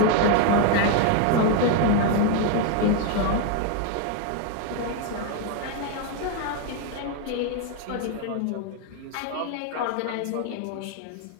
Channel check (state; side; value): different; both; correlation 0.01